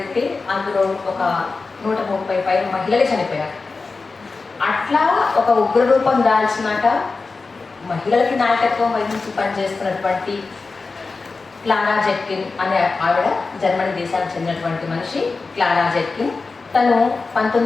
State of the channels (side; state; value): right; quieter; 4.1 dB